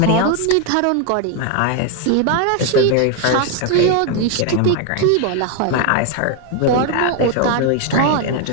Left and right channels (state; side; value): different; both; correlation 0.01